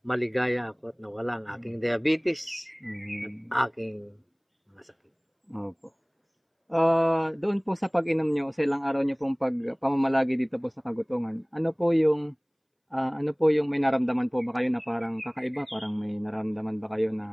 maligaya ako at nawala ang aking diabetes at aking mga sakit. Opo. Doon po sa pag-inom nyo, sa ilang araw nyo pong pamamalagi dito po sa Kagutungan, ano po yung may naramdaman po ba kayo na parang kakaiba? Parang may naramdaman ba kayo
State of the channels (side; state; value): both; identical; correlation 1.00